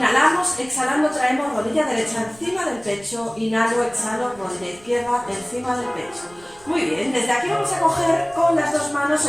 exhalando traemos rodilla derecha encima del pecho, inhalo, exhalo, rodilla izquierda encima del pecho. Muy bien, desde aquí vamos a coger con las dos manos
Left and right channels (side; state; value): right; noise; rumble, 26 dB below the sound